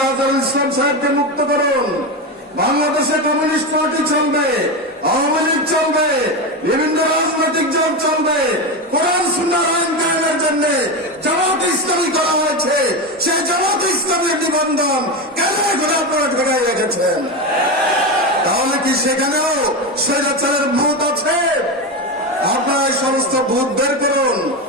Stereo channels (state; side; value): normal; both; correlation 0.16